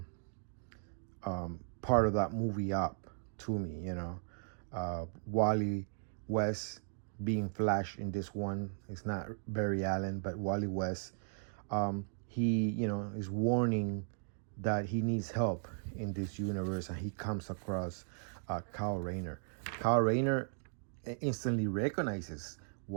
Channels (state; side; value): silent; left; digital silence